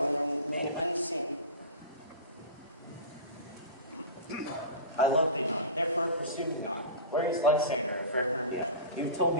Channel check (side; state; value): both; inverted; correlation -0.30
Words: and remain unseen. I love thee not, therefore pursue me not. Where is Lysander and fair Hermia? You've told